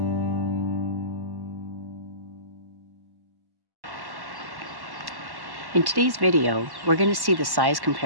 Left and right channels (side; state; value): left; late; 1.1 ms